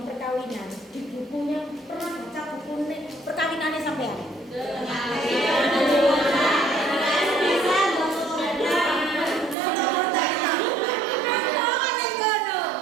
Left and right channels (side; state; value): left; drops out; at 9.6 s